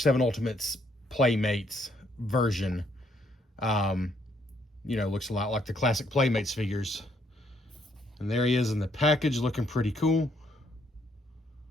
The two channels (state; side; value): normal; both; correlation 0.70